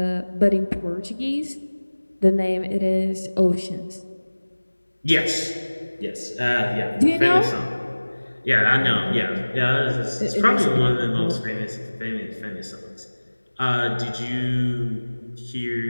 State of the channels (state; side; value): inverted; both; correlation -1.00